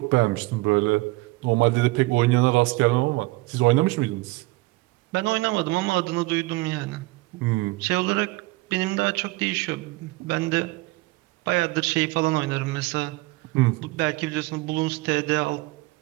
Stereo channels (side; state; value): left; quieter; 21.9 dB